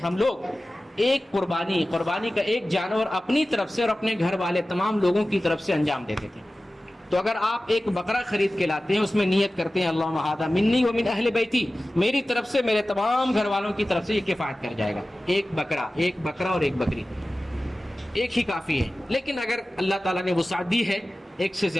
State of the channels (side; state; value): both; normal; correlation 0.96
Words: لوگ ایک قربانی کا ایک جانور اپنی طرف سے اور اپنے گھر والے تمام لوگوں کی طرف سے انجام دیتے تھے۔ تو اگر آپ ایک بکرا خرید کے لاتے ہیں، اس میں نیت کرتے ہیں اللہم ھذا منی ومن اہل بیتی، میری طرف سے میرے تمام گھر والوں کی طرف سے یہ کفایت کر جائے گا، ایک بکرا اور ایک بکری، ایک ہی کافی ہے۔ لیکن اگر اللہ تعالیٰ نے وسعت دی ہے، ایک سے